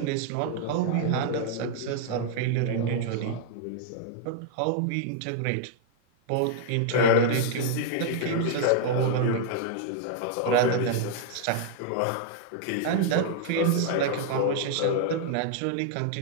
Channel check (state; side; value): different; both; correlation 0.00